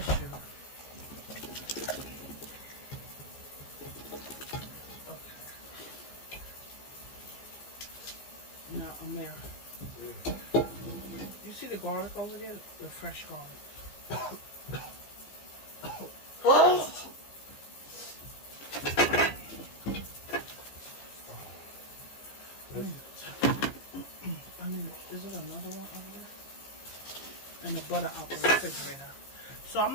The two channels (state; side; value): late; right; 15 ms